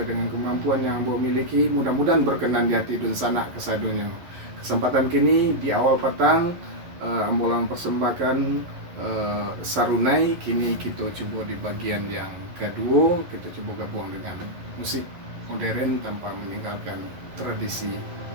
dengan kemampuan yang ambo miliki. Mudah-mudahan berkenan di hati dusana kasadonyo. Kesempatan kini di awal petang ambo lang persembahkan sarunai. Kini kita coba di bagian yang kedua, kita coba gabung dengan musik modern tanpa meninggalkan tradisi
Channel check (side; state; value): left; late; 11 ms